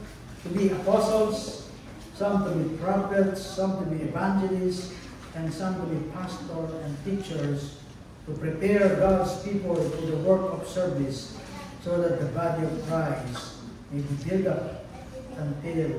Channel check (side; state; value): both; identical; correlation 1.00